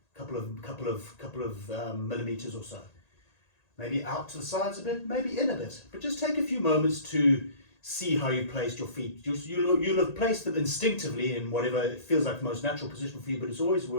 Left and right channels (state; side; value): late; right; 1.8 ms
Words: couple of millimeters or so. Maybe out to the sides a bit, maybe in a bit. But just take a few moments to see how you placed your feet. You'll have placed them instinctively in whatever it feels like the most natural position for you, but it's always